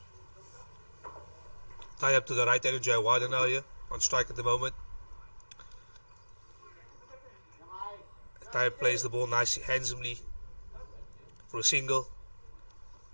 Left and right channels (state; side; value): inverted; both; correlation -1.00